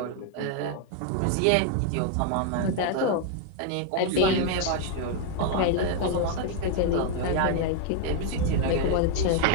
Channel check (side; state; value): both; different; correlation 0.00